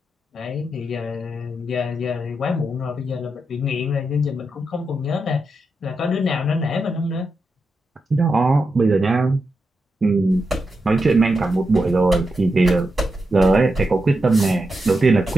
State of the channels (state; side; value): normal; both; correlation 0.87